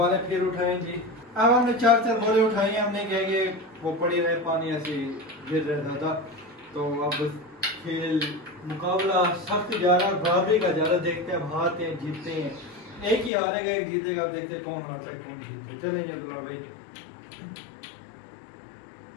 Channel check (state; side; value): drops out; right; at 13.3 s